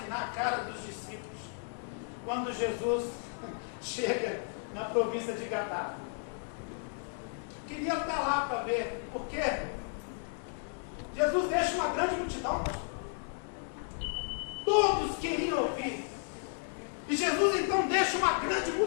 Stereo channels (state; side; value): silent; right; 55 dB below the other